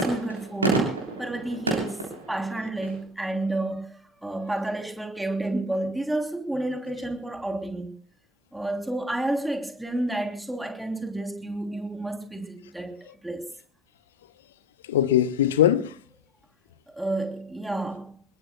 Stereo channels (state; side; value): normal; both; correlation 0.37